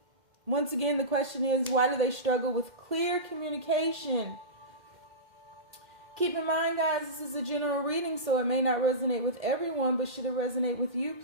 Once again, the question is, why do they struggle with clear communication? Keep in mind, guys, this is a general reading, so it may not resonate with everyone, but should it resonate with you,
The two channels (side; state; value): left; late; 2.1 ms